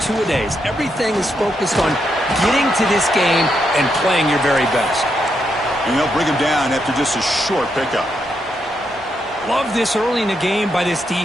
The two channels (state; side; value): normal; both; correlation 0.81